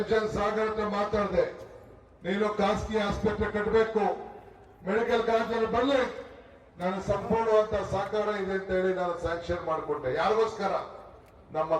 ಸಾಗರ್ ಹತ್ರ ಮಾತಾಡಿದೆ, ನೀನು ಖಾಸಗಿ ಆಸ್ಪತ್ರೆ ಕಟ್ಟಬೇಕು, ಮೆಡಿಕಲ್ ಕಾಲೇಜಲ್ಲಿ ಬರಲಿ, ನಾನು ಸಂಪೂರ್ಣವಂತ ಸಹಕಾರ ಇದೆ ಅಂತ ಹೇಳಿ ನಾನು ಸ್ಯಾಂಕ್ಷನ್ ಮಾಡಿಕೊಟ್ಟೆ. ಯಾರಿಗೋಸ್ಕರ? ನಮ್ಮ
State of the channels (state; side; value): identical; both; correlation 1.00